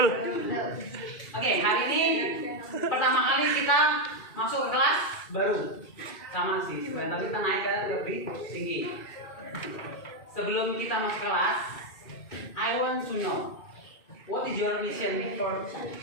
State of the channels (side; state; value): right; late; 2.3 ms